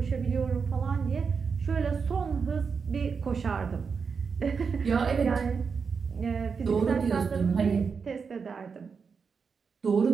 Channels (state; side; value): quieter; left; 5.6 dB